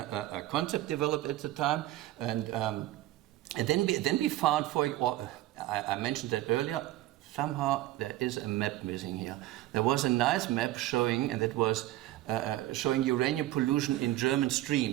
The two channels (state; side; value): quieter; left; 15.8 dB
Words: concept developed at the time. And then we found, I mentioned that earlier. Somehow there is a map missing here. There was a nice map showing, and that was showing uranium pollution in German